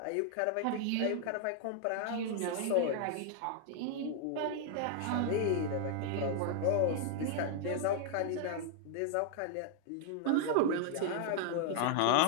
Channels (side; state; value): both; different; correlation 0.00